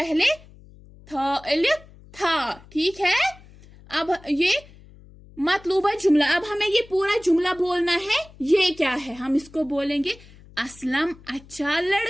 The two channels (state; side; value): noise; left; hum, 23 dB below the sound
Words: था अलिफ था, ठीक है। अब ये मतलूबा जुमला। अब हमें ये पूरा जुमला बोलना है। ये क्या है? हम इसको बोलेंगे असलम अच्छा